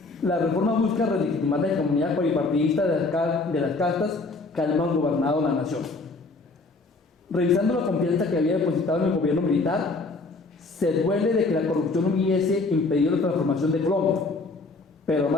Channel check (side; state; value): right; quieter; 3.5 dB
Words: la reforma busca relegitimar la hegemonía bipartidista de las castas que han gobernado la nación. Revisando la confianza que había depositado en el gobierno militar, se duele de que la corrupción hubiese impedido la transformación de Colombia, pero